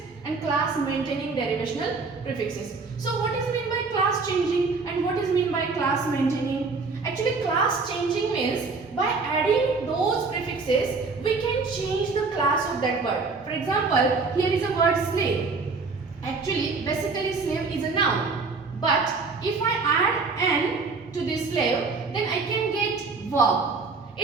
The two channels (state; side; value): quieter; left; 4.3 dB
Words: and class maintaining derivational prefixes. So what is meant by class changing and what is meant by class maintaining? Actually class changing means by adding those prefixes we can change the class of that word. For example, here is a word slave. Actually basically slave is a noun, but if I add n to this slave, then I can get verb.